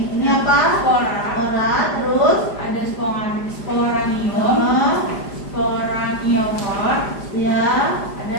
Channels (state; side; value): late; right; 5.0 ms